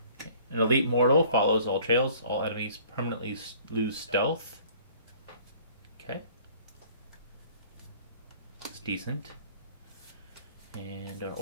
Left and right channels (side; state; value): both; inverted; correlation -0.52